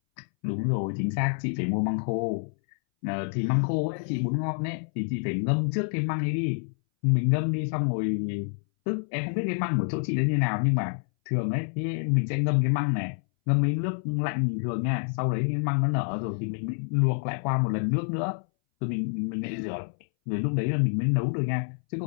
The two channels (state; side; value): silent; right; 60 dB below the other